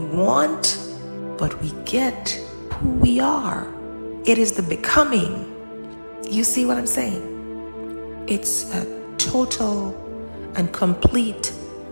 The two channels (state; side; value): inverted; both; correlation -1.00